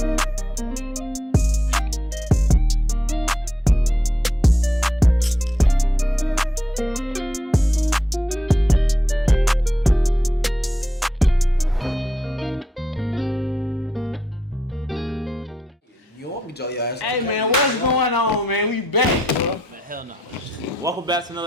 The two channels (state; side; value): normal; both; correlation 0.82